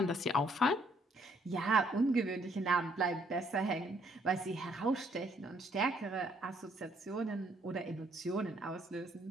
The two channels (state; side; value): normal; both; correlation 0.68